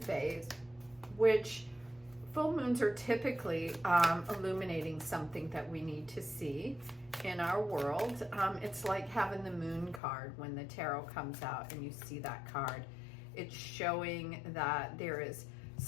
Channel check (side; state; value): right; drops out; at 10.0 s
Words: phase, which full moons are typically illuminating something that we need to see in our world. It's like having the moon card when the tarot comes out and you see that card. It's showing that there is